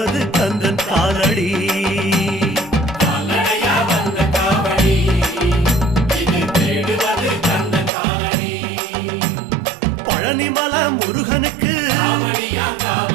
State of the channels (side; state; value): left; drops out; at 7.9 s